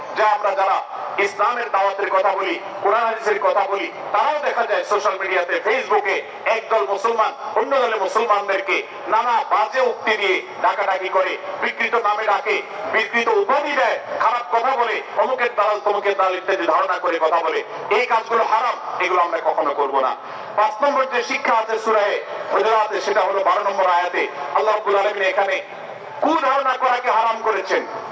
যে আমরা যারা ইসলামের দাওয়াতের কথা বলি, কোরআন হাদিসের কথা বলি, তারাও দেখা যায় সোশ্যাল মিডিয়াতে, ফেসবুকে একদল মুসলমান অন্য দলের মুসলমানদেরকে নানা বাজে উক্তি দিয়ে ডাকাডাকি করে, বিকৃত নামে ডাকে, বিকৃত উপাধি দেয়, খারাপ কথা বলে, অমুকের দালাল তমুকের দালাল ইত্যাদি ধারণা করে কথা বলে। এই কাজগুলো হারাম, এগুলো আমরা কখনো করব না। 5 নম্বর যে শিক্ষা আছে সূরা হুজুরাতে, সেটা হলো 12 নম্বর আয়াতে আল্লাহ রাব্বুল আলামিন এখানে কুধারণা করাকে হারাম করেছেন,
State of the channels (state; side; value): identical; both; correlation 1.00